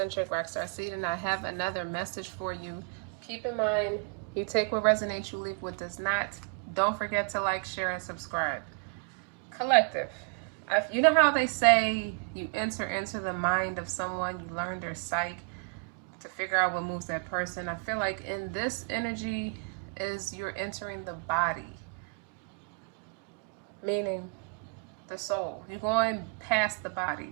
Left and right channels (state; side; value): quieter; left; 37.3 dB